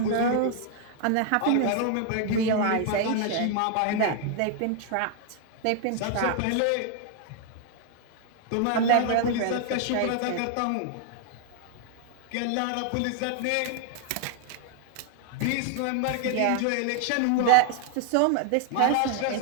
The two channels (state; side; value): different; both; correlation 0.00